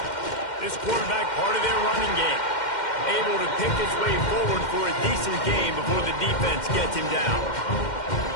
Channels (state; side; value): late; right; 2.1 ms